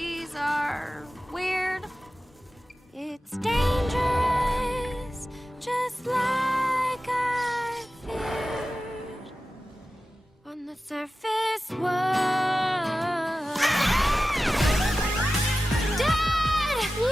are weird. It's dangerous, just like I feared. On the surface was... Dad!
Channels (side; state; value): both; normal; correlation 0.94